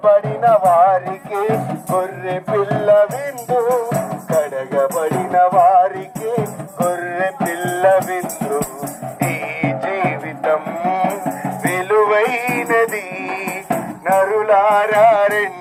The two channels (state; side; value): identical; both; correlation 1.00